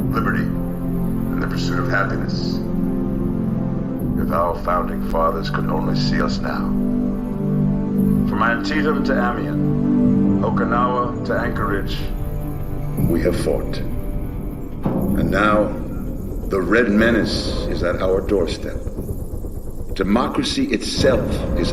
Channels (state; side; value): identical; both; correlation 1.00